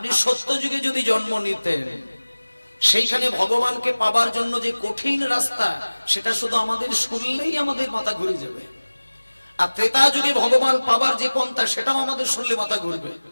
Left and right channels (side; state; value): both; inverted; correlation -1.00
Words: সত্য যুগে যদি জন্ম নিতেন, সেইখানে ভগবানকে পাবার জন্য যে কঠিন রাস্তা, সেটা শুধু আমাদের শুনলেই আমাদের মাথা ঘুরে যাবে। আর ত্রেতা যুগে ভগবান পাবার যে পন্থা, সেটাও আমাদের শুনলে মাথা ঘুরবে।